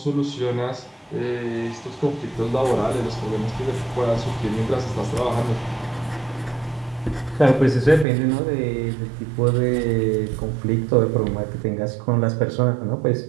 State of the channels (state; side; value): drops out; left; at 8.1 s